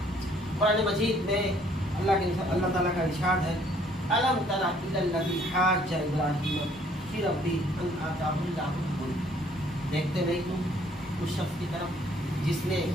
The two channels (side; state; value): both; normal; correlation 0.61